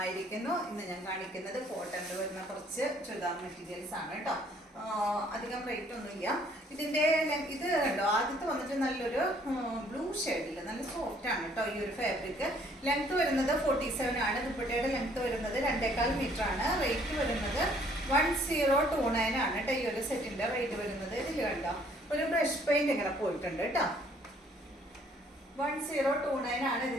ഇന്ന് ഞാൻ കാണിക്കുന്നത് കോട്ടണിൽ വരുന്ന കുറച്ച് ചുരിദാർ മെറ്റീരിയൽസ് ആണ് കേട്ടോ. അധികം റേറ്റ് ഒന്നുമില്ല. ഇതിൻ്റെ ഇത് കണ്ടോ, ആദ്യത്തെ വന്നിട്ട് നല്ലൊരു ബ്ലൂ ഷെയ്ഡിൽ നല്ല സോഫ്റ്റ് ആണ് കേട്ടോ. ഈ ഒരു ഫാബ്രിക് ലെങ്ത് വരുന്നത് 47 ആണ്. ദുപ്പട്ടയുടെ ലെങ്ത് വരുന്നത് 2.25 മീറ്റർ ആണ്. റേറ്റ് വരുന്നത് 1029 ആണ് കേട്ടോ. ഈ ഒരു സെറ്റിൻ്റെ റേറ്റ് വരുന്നത് ഇതിൽ കണ്ടോ ഒരു ബ്രഷ് പെയിന്റ് ഇങ്ങനെ പോയിട്ടുണ്ട് കേട്ടോ. 1029 ആണ്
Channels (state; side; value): normal; both; correlation 0.62